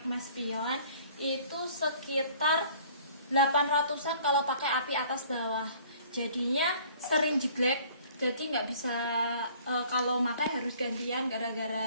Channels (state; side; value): inverted; both; correlation -0.53